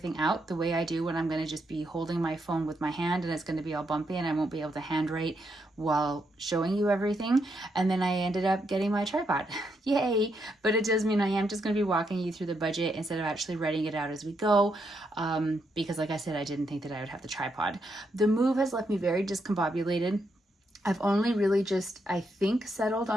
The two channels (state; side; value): normal; both; correlation 0.79